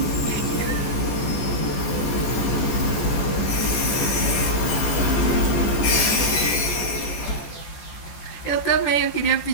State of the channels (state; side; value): late; right; 14 ms